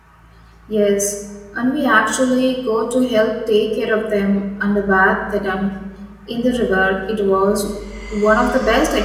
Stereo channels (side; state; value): both; identical; correlation 1.00